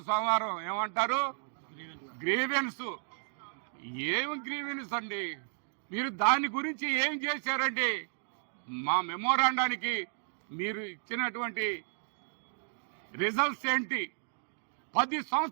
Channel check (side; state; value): left; silent; digital silence